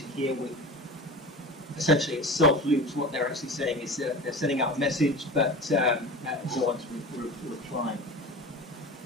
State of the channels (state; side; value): normal; both; correlation 0.33